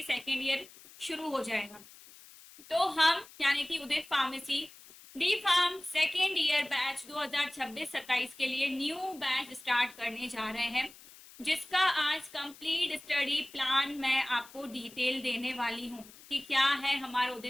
सेकेंड ईयर शुरू हो जाएगा। तो हम यानी कि Udit pharmacy D farm second year batch 2026-27 के लिए न्यू बैच स्टार्ट करने जा रहे हैं, जिसका आज कंप्लीट स्टडी प्लान मैं आपको डिटेल देने वाली हूँ कि क्या है हमारा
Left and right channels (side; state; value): left; noise; hiss, 20 dB below the sound